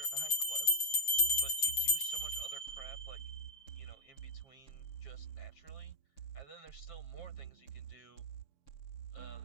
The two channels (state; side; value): late; right; 7.1 ms